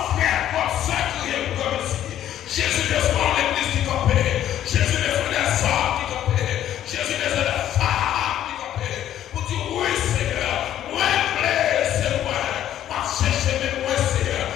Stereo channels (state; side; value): quieter; right; 11.5 dB